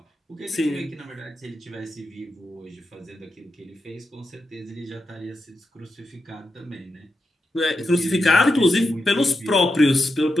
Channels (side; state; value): both; normal; correlation 0.87